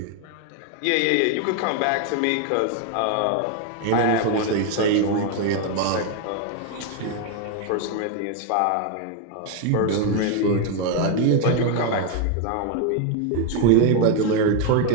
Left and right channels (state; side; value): different; both; correlation 0.01